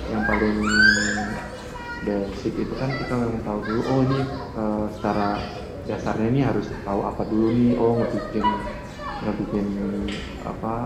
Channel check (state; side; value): identical; both; correlation 1.00